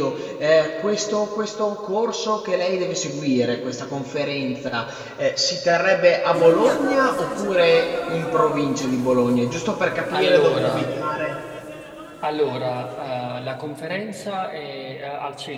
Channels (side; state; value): both; identical; correlation 1.00